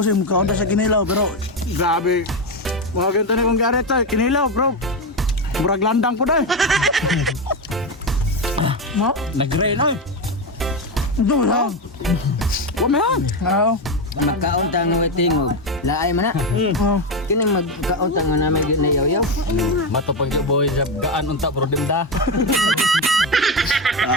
mukha sa kinilaw pero Grabe. Mga ganito na kong garet ay kinilaw bro. Murag landang po dahil. mo. Nag-rain oy. Ito lang. Wamahan. Oo. Magkaon ta nga tingog. Laay man na. Oh. Kini magkaon ta nga namin ginayaw-yaw. Mato pang boy sa gaan unta pro dinda.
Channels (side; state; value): both; normal; correlation 0.12